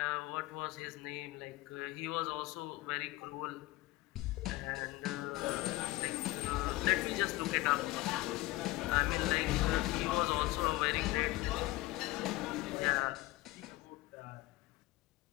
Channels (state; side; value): quieter; right; 19.2 dB